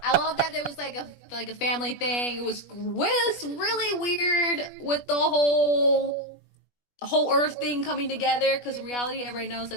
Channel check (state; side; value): late; right; 21 ms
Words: I love that there was like a family thing. It was really weird with the whole Earth thing coming together, because in reality, everybody knows